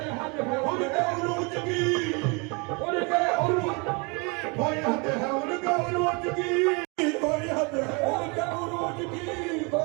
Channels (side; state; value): left; quieter; 31.0 dB